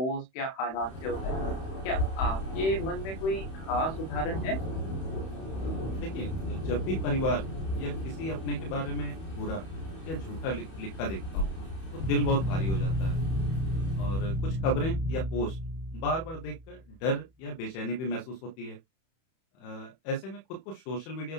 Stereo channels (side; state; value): right; late; 31 ms